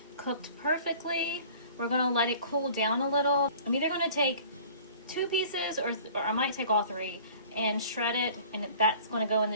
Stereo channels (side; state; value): both; inverted; correlation -0.48